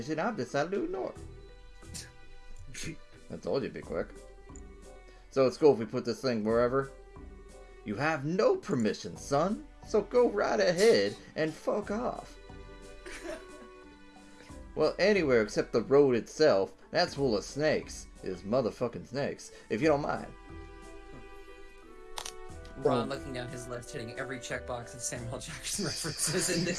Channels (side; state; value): both; identical; correlation 1.00